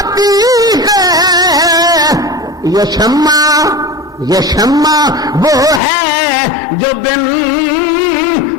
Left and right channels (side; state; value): right; drops out; at 5.8 s